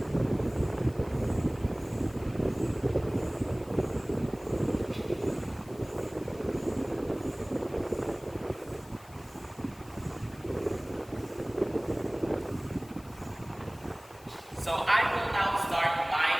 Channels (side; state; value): left; noise; hiss, 23 dB below the sound